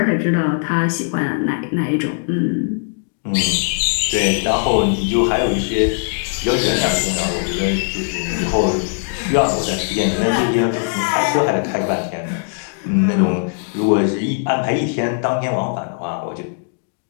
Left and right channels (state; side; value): silent; right; digital silence